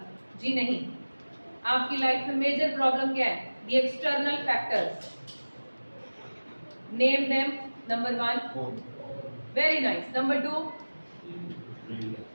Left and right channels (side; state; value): both; inverted; correlation -1.00